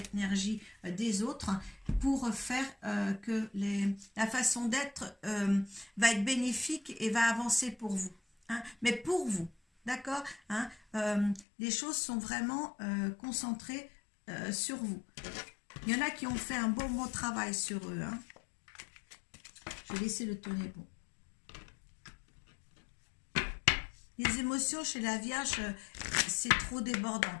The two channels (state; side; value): drops out; right; at 11.5 s